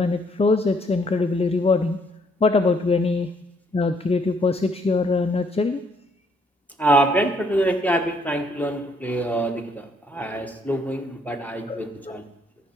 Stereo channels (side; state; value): both; normal; correlation 0.68